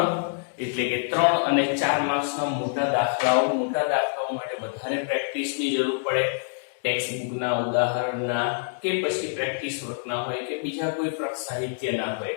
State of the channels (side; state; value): right; silent; digital silence